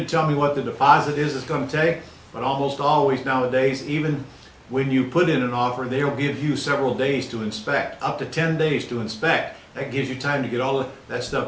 tell me what the deposit is it's going to take, but almost always nowadays, even when you put in an offer, they'll give you several days to inspect, up to 10 days to inspect. That gives you time to get all of that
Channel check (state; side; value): identical; both; correlation 1.00